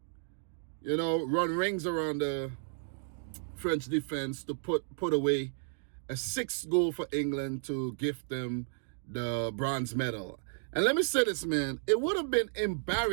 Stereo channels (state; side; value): silent; left; digital silence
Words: run rings around the French defense to put away a 6th goal for England to gift them the bronze medal. And let me say this, man, it would have been